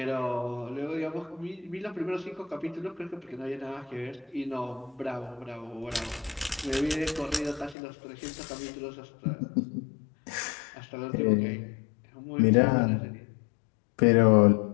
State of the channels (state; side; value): drops out; right; at 7.8 s